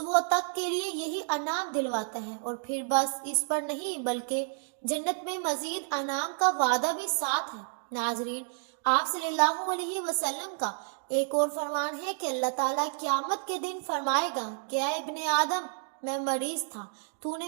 تک کے لیے یہی انعام دلواتا ہے۔ اور پھر بس اس پر نہیں بلکہ جنت میں مزید انعام کا وعدہ بھی ساتھ ہے۔ ناظرین، آپ صلی اللہ علیہ وسلم کا ایک اور فرمان ہے کہ اللہ تعالیٰ قیامت کے دن فرمائے گا کہ اے ابن آدم، میں مریض تھا، تو نے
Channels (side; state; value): left; silent; digital silence